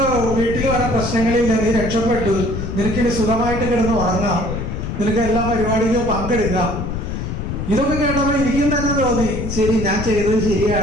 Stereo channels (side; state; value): left; noise; rumble, 5 dB below the sound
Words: വീട്ടിൽ വരെ പ്രശ്നങ്ങളില്ല, നീ രക്ഷപ്പെട്ടു, നിനക്കിനി സുഖമായിട്ട് കിടന്ന് ഉറങ്ങാം, നിനക്ക് എല്ലാ പരിപാടിയിലും പങ്കെടുക്കാം. ഇതൊക്കെ കേട്ടപ്പോൾ എനിക്കും തന്നെ തോന്നി, ശരി, ഞാൻ ചെയ്തത്